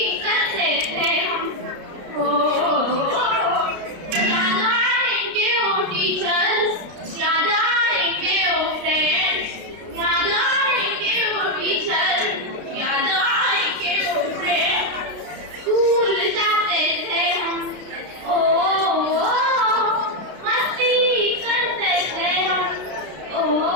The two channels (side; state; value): left; late; 33 ms